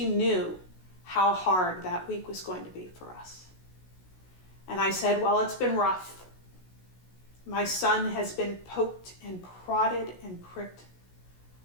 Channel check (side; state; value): right; late; 16 ms